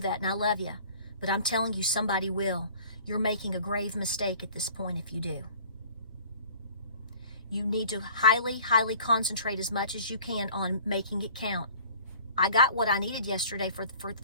and I love you. But I'm telling you, somebody will. You're making a grave mistake at this point if you do. You need to highly, highly concentrate as much as you can on making it count. I got what I needed yesterday for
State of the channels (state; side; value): inverted; both; correlation -0.48